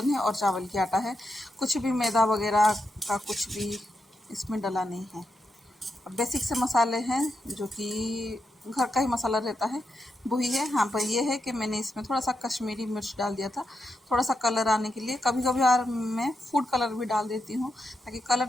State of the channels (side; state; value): both; normal; correlation 0.85